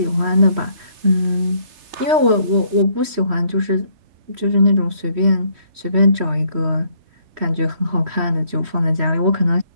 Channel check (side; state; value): left; late; 3.1 ms